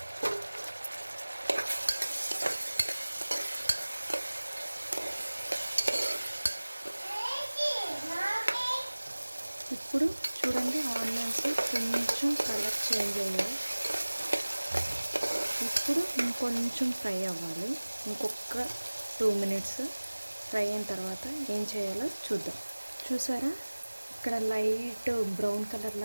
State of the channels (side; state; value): both; inverted; correlation -1.00